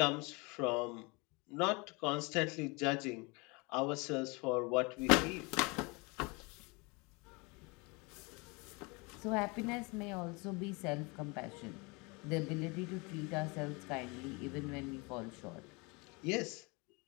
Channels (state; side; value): quieter; right; 28.2 dB